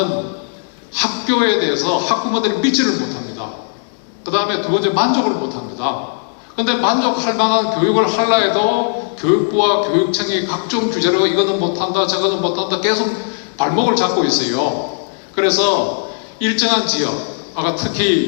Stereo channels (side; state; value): right; silent; digital silence